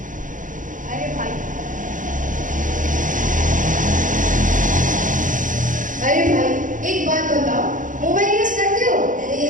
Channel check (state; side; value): late; left; 0.38 ms